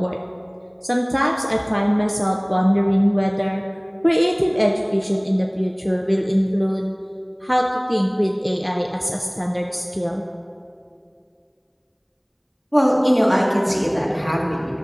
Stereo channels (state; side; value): identical; both; correlation 1.00